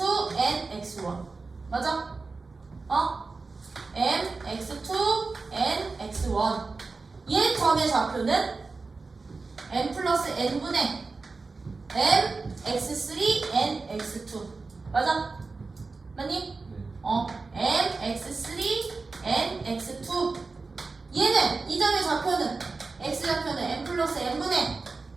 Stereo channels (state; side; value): quieter; left; 4.0 dB